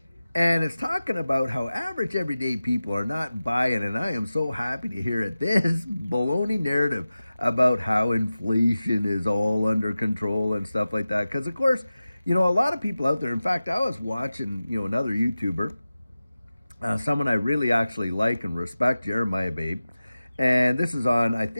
and it's talking about how average everyday people are not buying, and I am so happy to hear it. This baloney narrative about how inflation is all under control and stuff like that. Because of course, a lot of people out there. In fact, I was watching, another YouTuber, someone I really actually like and respect, Jeremiah Babe. And this is on, I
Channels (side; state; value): both; inverted; correlation -0.95